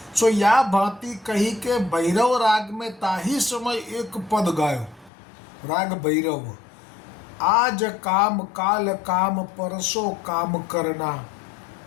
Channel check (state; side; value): drops out; right; at 5.1 s